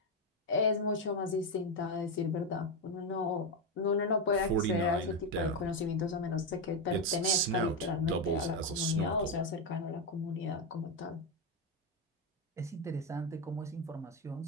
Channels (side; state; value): both; normal; correlation 0.07